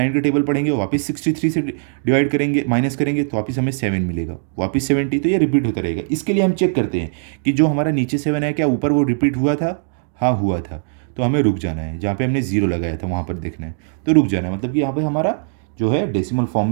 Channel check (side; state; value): left; silent; digital silence